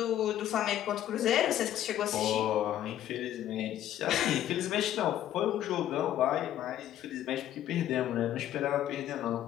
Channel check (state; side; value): quieter; right; 11.9 dB